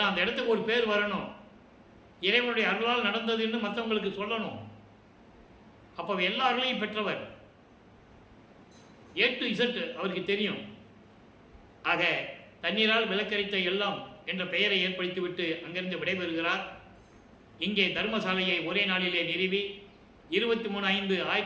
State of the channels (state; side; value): identical; both; correlation 1.00